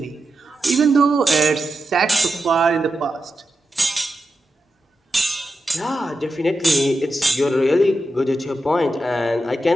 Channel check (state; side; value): normal; both; correlation 0.89